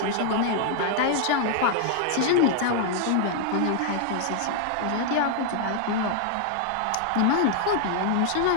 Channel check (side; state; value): both; different; correlation 0.00